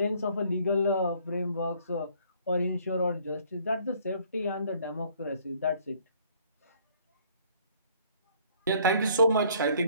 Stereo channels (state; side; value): inverted; both; correlation -0.61